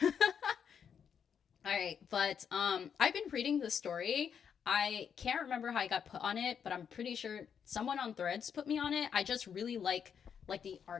All right, but I've been reading the story. I can't remember how I got put on it, but I'm pretty sure someone on Threads put me on it. I just really like the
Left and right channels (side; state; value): right; quieter; 7.5 dB